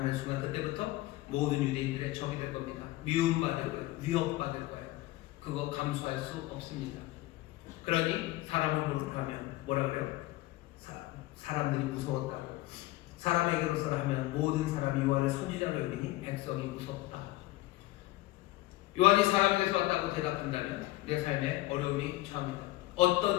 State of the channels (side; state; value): right; quieter; 17.7 dB